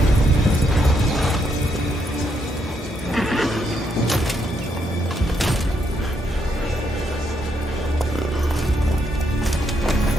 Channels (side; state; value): both; normal; correlation 0.76